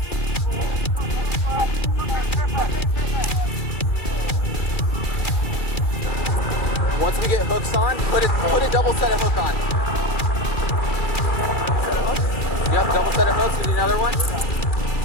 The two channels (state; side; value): late; right; 2.3 ms